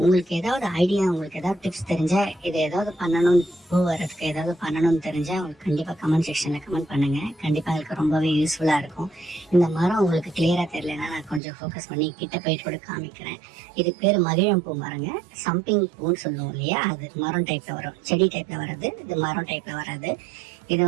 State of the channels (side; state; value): left; drops out; at 11.4 s